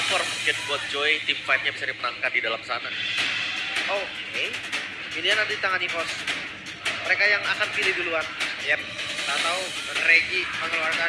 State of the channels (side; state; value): both; identical; correlation 1.00